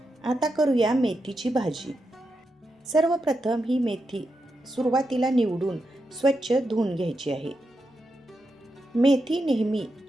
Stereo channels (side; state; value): both; normal; correlation 0.86